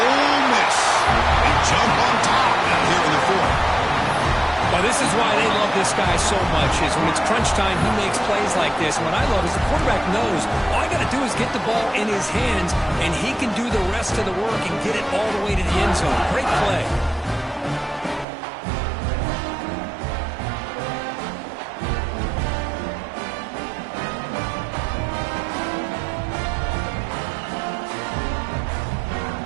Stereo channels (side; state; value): left; drops out; at 18.2 s